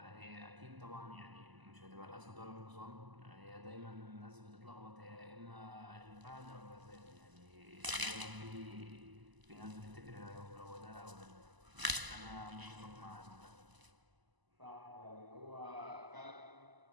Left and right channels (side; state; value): left; late; 1.0 ms